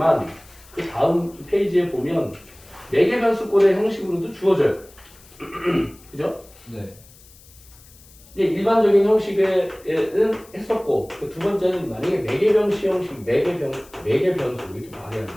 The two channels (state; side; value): noise; left; hiss, 24 dB below the sound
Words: 그 다음 페이지에 보면 매개변수꼴의 형식으로도 주어져요, 그죠? 네. 이제 일반적인 형식에는 했었고 그 두 번째는 만약에 매개변수 형식, 매개변수 이렇게 말해야